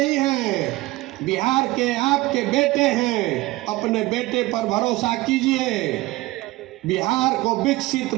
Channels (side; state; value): left; quieter; 19.5 dB